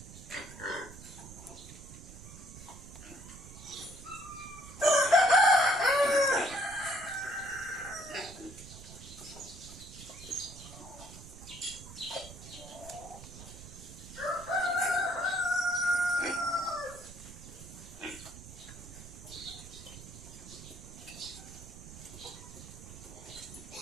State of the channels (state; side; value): noise; right; rumble, 15 dB below the sound